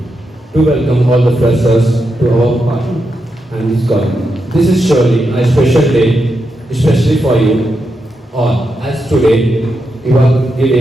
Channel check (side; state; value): both; normal; correlation 0.85